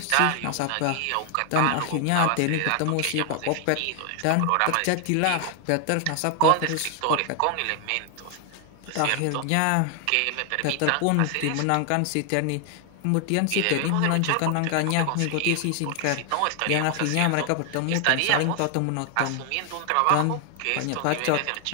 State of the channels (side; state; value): both; different; correlation 0.00